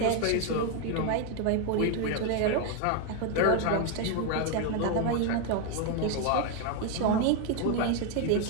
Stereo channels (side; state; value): both; different; correlation 0.01